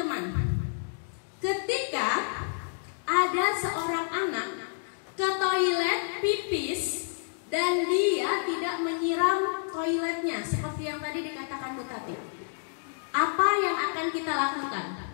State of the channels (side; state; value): right; silent; digital silence